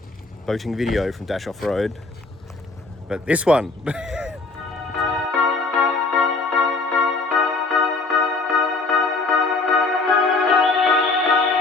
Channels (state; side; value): quieter; right; 3.7 dB